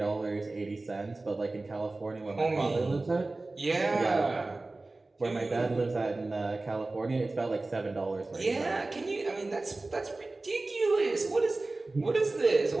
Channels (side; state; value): left; quieter; 3.2 dB